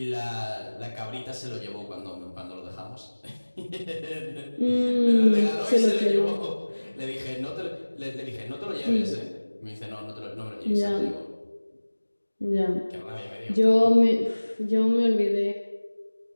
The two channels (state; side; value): inverted; both; correlation -1.00